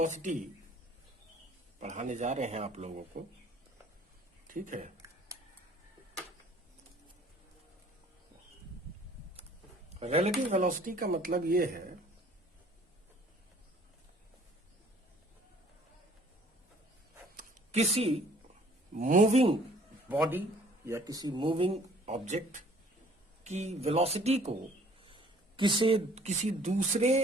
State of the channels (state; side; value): normal; both; correlation 0.56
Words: पढ़ाने जा रहे हैं आप लोगों को। ठीक है, रिलेटिव वेलोसिटी का मतलब ये है किसी मूविंग बॉडी या किसी मूविंग ऑब्जेक्ट की वेलोसिटी को किसी दूसरे